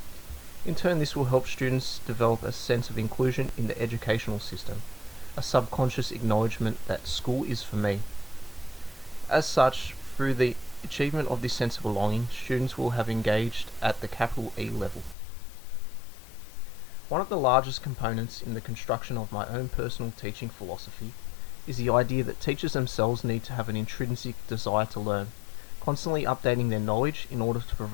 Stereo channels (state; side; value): drops out; right; at 15.2 s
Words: In turn, this will help students develop a sense of inclusion in the educational system, a subconscious acknowledgement that school is for me. As such, through the achievement of this sense of belonging, students will have engaged at the capital E level. One of the largest components in the construction of my own personal teaching philosophy is the idea that teachers themselves need to have an intrinsic desire to learn, constantly updating their knowledge in order to